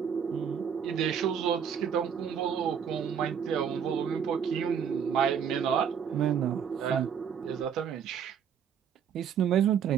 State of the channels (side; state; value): left; quieter; 7.8 dB